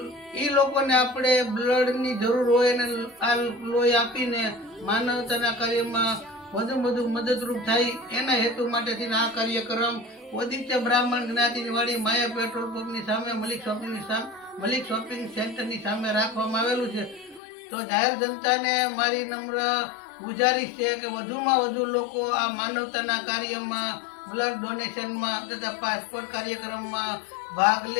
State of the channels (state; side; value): drops out; right; at 17.4 s